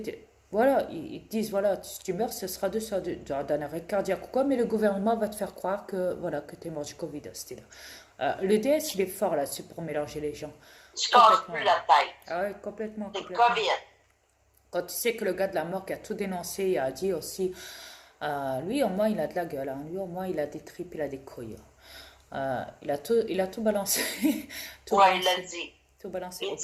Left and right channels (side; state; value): both; identical; correlation 1.00